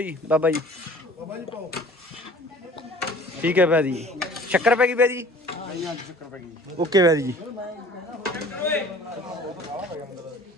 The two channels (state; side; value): normal; both; correlation 0.48